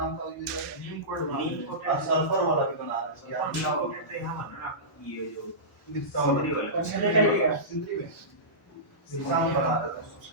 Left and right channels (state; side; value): normal; both; correlation -0.19